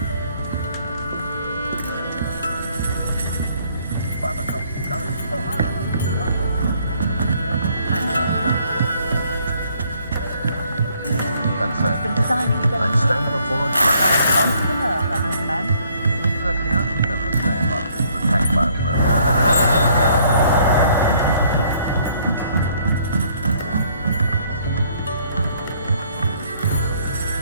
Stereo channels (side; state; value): both; inverted; correlation -0.65